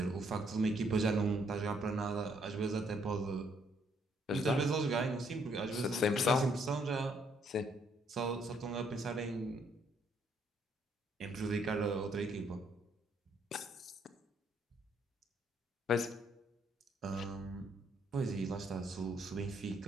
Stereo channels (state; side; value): normal; both; correlation 0.69